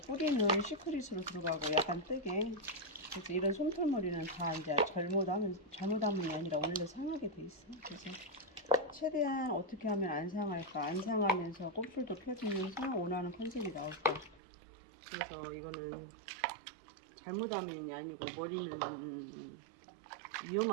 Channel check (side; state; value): left; drops out; at 14.4 s